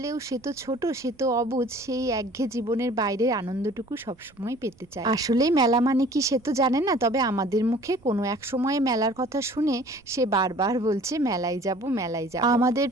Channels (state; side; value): noise; right; rumble, 29 dB below the sound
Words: সে তো ছোট, সে তো অবুঝ, সেই একঘেয়ে জীবনের বাইরের আনন্দটুকু সবসময় পেতে চায়। আসলেই মেলা মানে কি সে তো জানে না, তবে আমাদের মুখে কোনো এক সময়ে মেলার কথা শুনে সে বারবার বলছে মেলায় যাব, মেলায় যাব। আমাদের